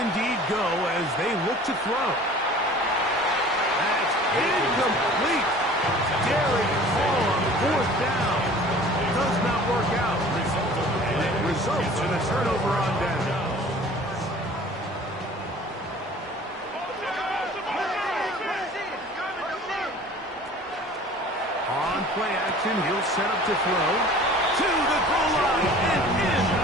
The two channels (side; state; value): both; normal; correlation 0.46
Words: go as they look to throw. That's incomplete. Derek Hall on 4th down. Does not work out. And it results in a turnover on down. On play action, he'll set up to throw. To the goal line and in.